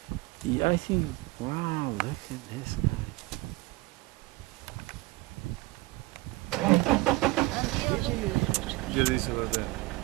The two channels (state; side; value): quieter; left; 21.1 dB